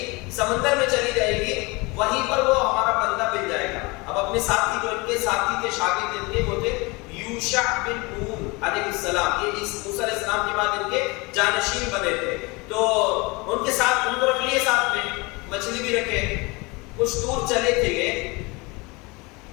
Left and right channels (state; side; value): quieter; right; 26.0 dB